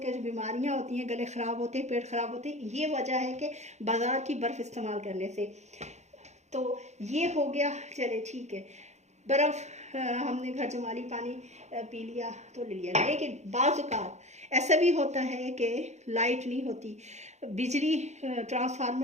के जो बीमारियां होती हैं, गले ख़राब होते हैं, पेट ख़राब होते हैं, ये वजह है कि बाज़ार की बर्फ़ इस्तेमाल करने से। तो ये हो गया, चले ठीक है, बर्फ़ हमने घर जमाली पानी पी लिया तो ले लिया। लेकिन बाज़ औक़ात ऐसा भी होता है कि लाइट नहीं होती, बिजली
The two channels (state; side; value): late; left; 0.33 ms